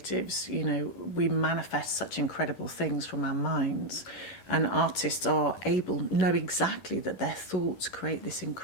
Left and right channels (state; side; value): late; right; 11 ms